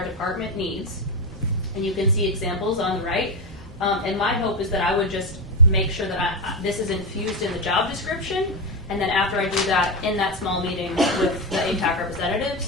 department needs and you can see examples on the right. And my hope is that I would just make sure that this is infused in the job description, and then after I do that, in that small meeting with the AIPAC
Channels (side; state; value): both; normal; correlation 0.12